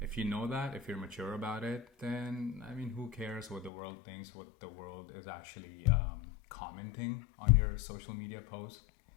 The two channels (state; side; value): drops out; right; at 3.7 s